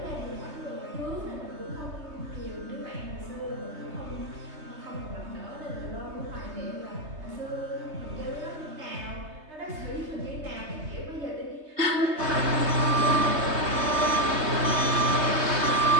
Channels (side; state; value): left; late; 3.3 ms